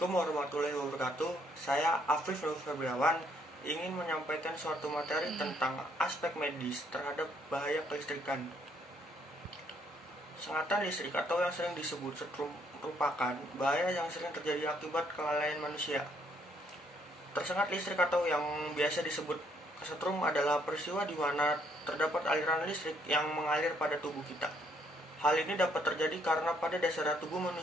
warahmatullahi wabarakatuh. Saya Afif Nur Febriawan ingin menyampaikan suatu materi tentang aspek medis terhadap bahaya kelistrikan. Sengatan listrik atau yang sering disebut setrum merupakan bahaya yang sering terjadi akibat kelalaian manusia. Tersengat listrik atau yang biasa disebut kesetrum adalah peristiwa di mana terdapat aliran listrik yang mengalir pada tubuh kita. Hal ini dapat terjadi karena pada dasarnya tubuh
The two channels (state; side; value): normal; both; correlation 0.69